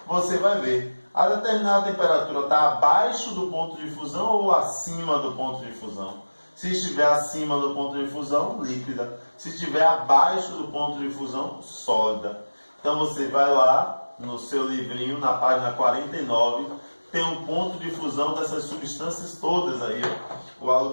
você vai ver, a determinada temperatura está abaixo do ponto de fusão ou acima do ponto de fusão. Se estiver acima do ponto de fusão, líquida. Se estiver abaixo do ponto de fusão, sólida. Então você vai lá no seu livrinho, na página 49, tem um ponto de fusão dessas substâncias todas aí, ó. O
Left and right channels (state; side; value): inverted; both; correlation -1.00